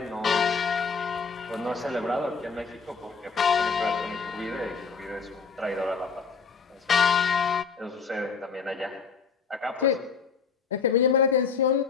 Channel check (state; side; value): quieter; right; 5.5 dB